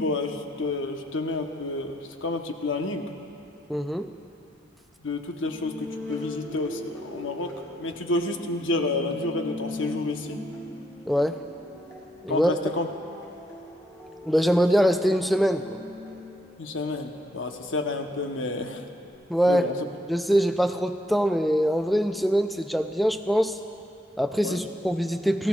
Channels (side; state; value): both; normal; correlation 0.75